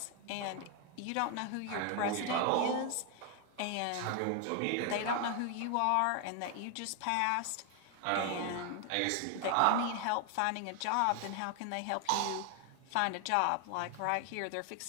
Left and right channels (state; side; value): different; both; correlation 0.00